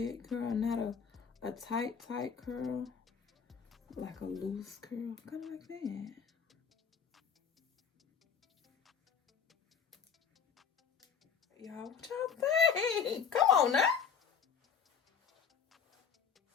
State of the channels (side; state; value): right; quieter; 6.7 dB